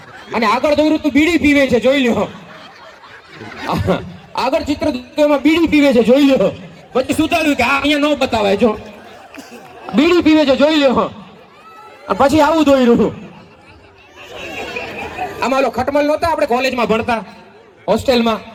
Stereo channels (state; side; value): identical; both; correlation 1.00